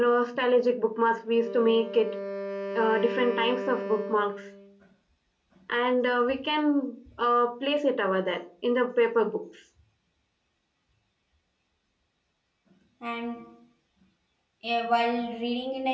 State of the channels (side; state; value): both; identical; correlation 1.00